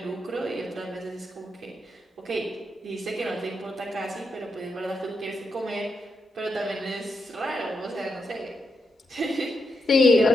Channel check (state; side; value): normal; both; correlation 0.84